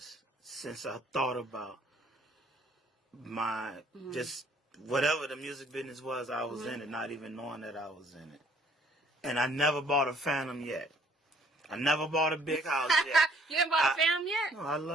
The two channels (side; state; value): both; normal; correlation 0.61